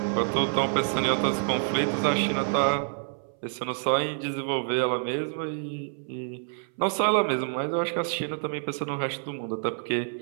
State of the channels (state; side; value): silent; left; 60 dB below the other